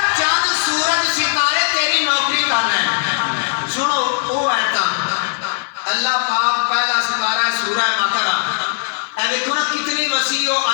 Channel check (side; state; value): right; silent; digital silence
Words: چند سورج ستارے تیری نوکری کر رہے ہیں. سنو وہ ایتا اللہ پاک پہلا ستارہ ہے سورہ بقرہ. اے دیکھو نا کتنی وسیع و